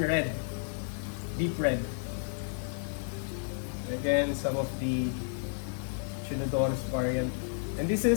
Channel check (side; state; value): right; silent; 57 dB below the other